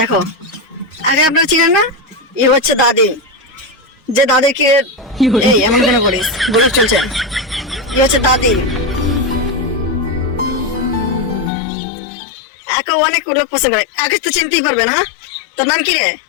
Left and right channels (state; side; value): drops out; right; at 11.5 s